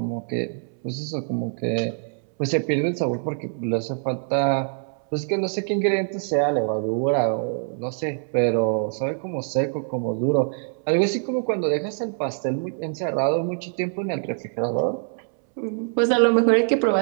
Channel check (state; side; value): silent; left; 62 dB below the other